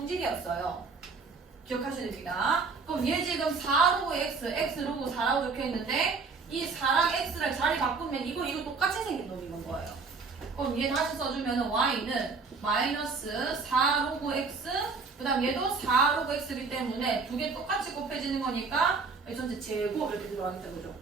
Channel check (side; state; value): left; quieter; 4.6 dB